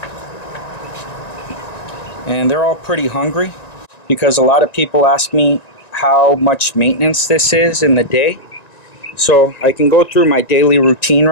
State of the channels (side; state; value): right; late; 1.9 ms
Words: And they're all pretty hungry because a lot of people ask me how much maintenance this is in the day. So I can go through my daily routine